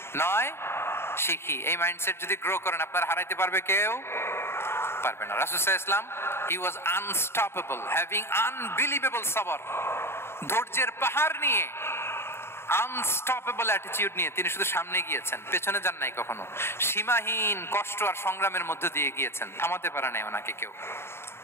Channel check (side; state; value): right; late; 0.12 ms